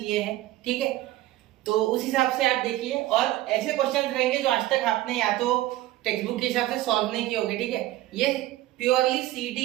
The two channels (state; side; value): quieter; left; 15.9 dB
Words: हैं, ठीक है, तो उस हिसाब से आप देखिए। और ऐसे क्वेश्चंस रहेंगे जो आज तक आपने या तो टेक्स्ट बुक के हिसाब से सॉल्व नहीं किए होंगे, ठीक है। ये प्योरली